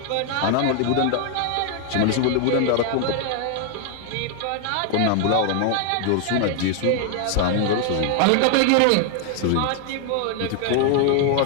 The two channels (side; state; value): both; different; correlation 0.00